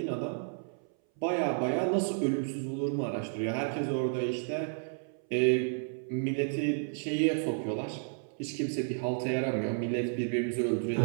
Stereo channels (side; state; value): left; silent; 57 dB below the other